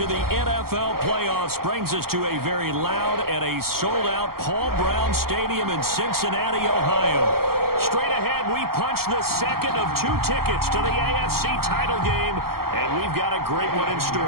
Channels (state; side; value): late; left; 0.94 ms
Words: the NFL playoffs brings us to a very loud and a sold-out Paul Brown Stadium in Cincinnati, Ohio. Straight ahead, we punch the second of 2 tickets to the AFC title game, and we've got a great one in